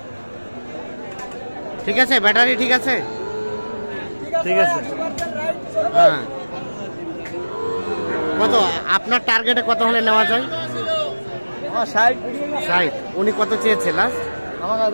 ঠিক আছে, ব্যাটারি ঠিক আছে? ঠিক আছে। হ্যাঁ, কত আপনার টার্গেটে কত হলে নেওয়া যায়? 60। উনি কত চেয়েছে লাস্ট?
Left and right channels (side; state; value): both; inverted; correlation -1.00